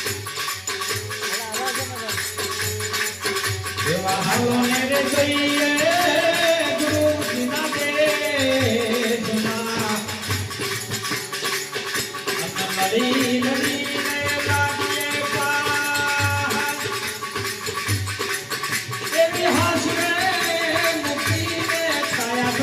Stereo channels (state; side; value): identical; both; correlation 1.00